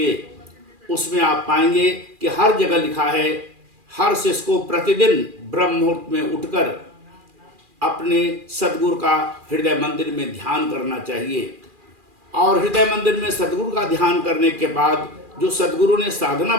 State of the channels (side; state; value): left; late; 2.4 ms